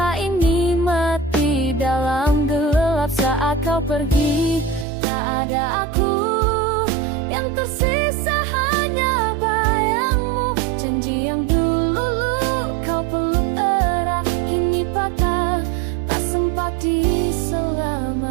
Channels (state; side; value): drops out; left; at 4.9 s